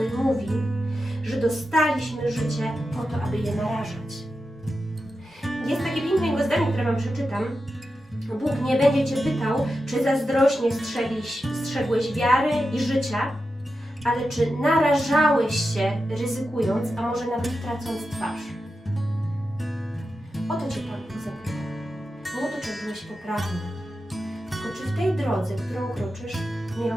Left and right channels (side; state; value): both; normal; correlation 0.90